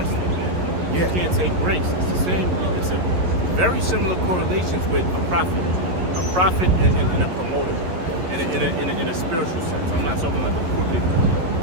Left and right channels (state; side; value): late; left; 11 ms